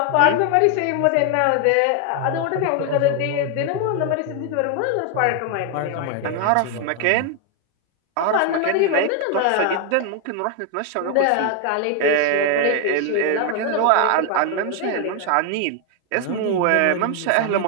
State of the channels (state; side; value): different; both; correlation 0.01